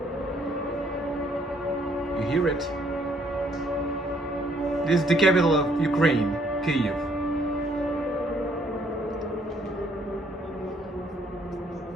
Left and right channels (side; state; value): both; normal; correlation 0.66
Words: You hear it? This is the capital of Ukraine, Kyiv.